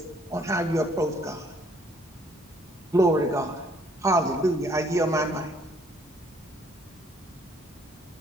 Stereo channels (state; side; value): normal; both; correlation 0.64